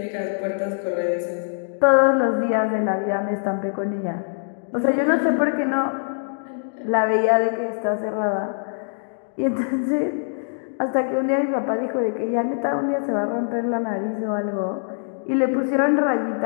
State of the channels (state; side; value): silent; right; digital silence